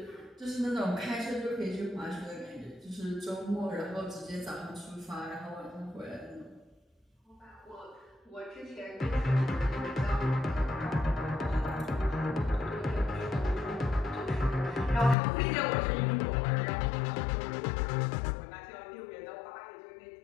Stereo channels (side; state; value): right; drops out; at 15.2 s